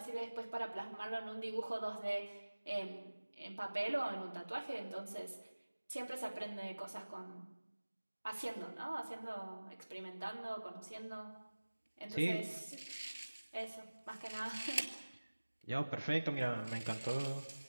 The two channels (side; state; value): both; inverted; correlation -1.00